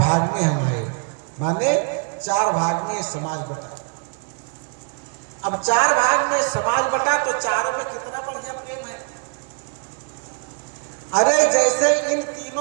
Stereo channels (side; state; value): left; quieter; 36.6 dB